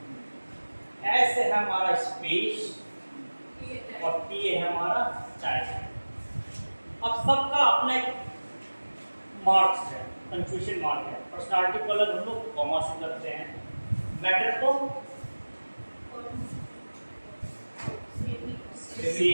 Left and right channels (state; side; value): inverted; both; correlation -1.00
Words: S है हमारा स्पेस और T है हमारा टाइम। अब सबका अपना एक मार्क्स है, कंफ्यूजन मार्क है। पर्सनालिटी को अलग हम लोग कॉमा से करते हैं, मैटर को